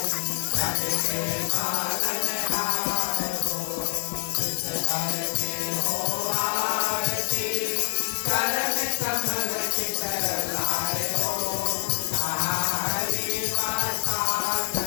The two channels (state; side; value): silent; right; digital silence